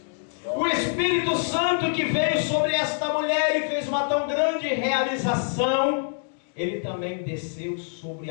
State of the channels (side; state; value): right; silent; digital silence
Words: O Espírito Santo que veio sobre esta mulher e fez uma tão grande realização, ele também desceu sobre